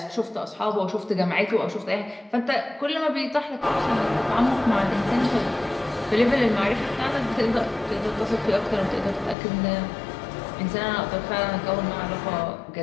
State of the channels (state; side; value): drops out; right; at 9.3 s